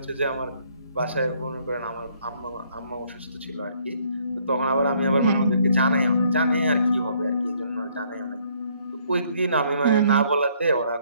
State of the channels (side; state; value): both; inverted; correlation -0.65